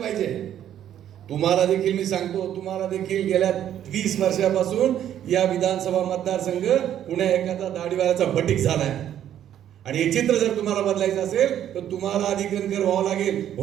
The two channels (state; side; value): quieter; left; 10.7 dB